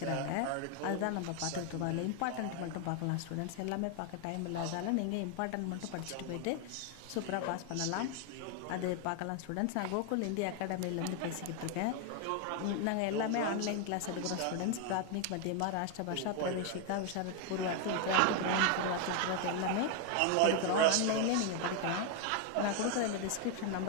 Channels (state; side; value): different; both; correlation 0.01